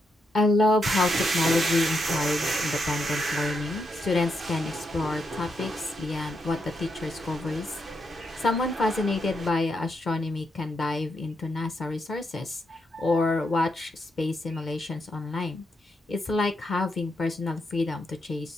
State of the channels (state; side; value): normal; both; correlation 0.81